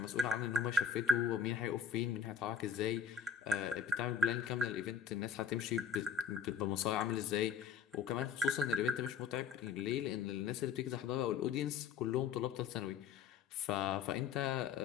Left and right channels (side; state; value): right; quieter; 6.9 dB